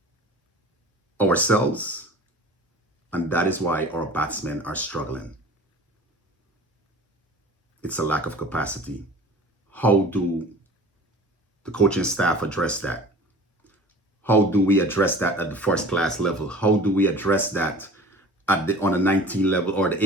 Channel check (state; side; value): normal; both; correlation 0.42